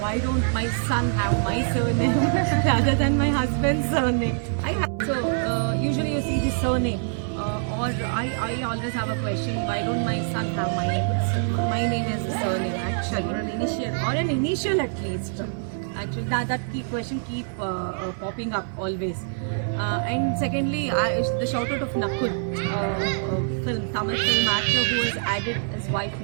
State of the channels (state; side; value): silent; left; 62 dB below the other